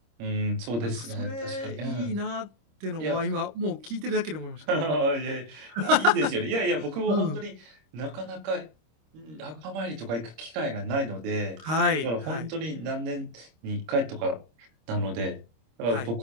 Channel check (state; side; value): late; left; 26 ms